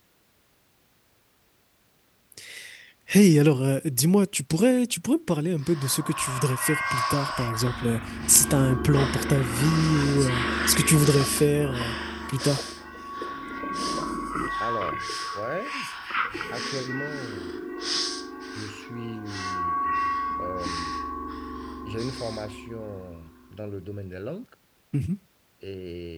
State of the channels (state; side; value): identical; both; correlation 1.00